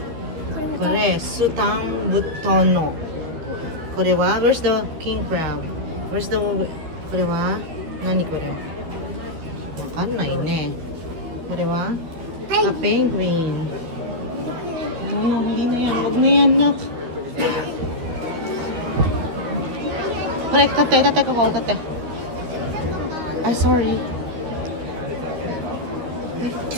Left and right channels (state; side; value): late; left; 13 ms